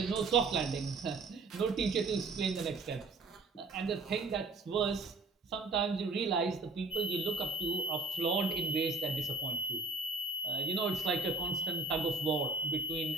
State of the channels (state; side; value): quieter; left; 3.5 dB